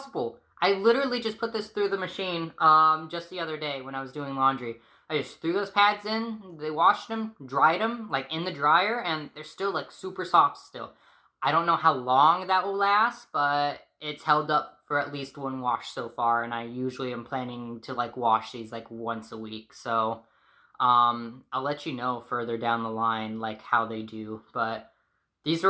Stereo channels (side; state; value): both; identical; correlation 1.00